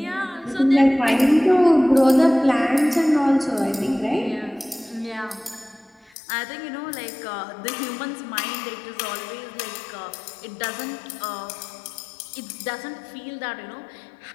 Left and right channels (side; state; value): right; drops out; at 6.2 s